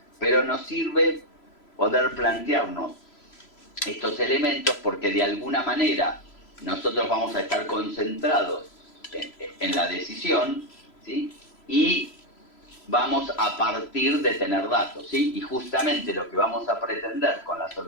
Pero nos sirve poder plantearnos estos elementos porque de alguna manera nosotros vamos a estar concentrados en la decisión, ¿sí? Y vamos a partir de tener datos, ¿sí? Y justamente lo que vamos a pretender con las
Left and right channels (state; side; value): late; right; 3.0 ms